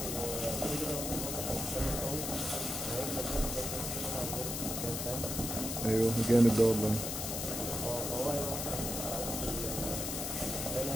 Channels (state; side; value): noise; left; hiss, 3 dB below the sound